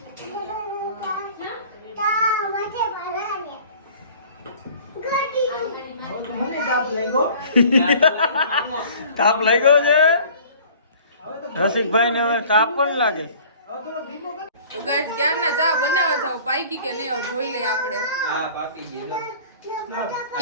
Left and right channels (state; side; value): inverted; both; correlation -0.48